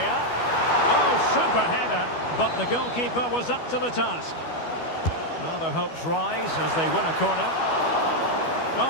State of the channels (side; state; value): right; late; 12 ms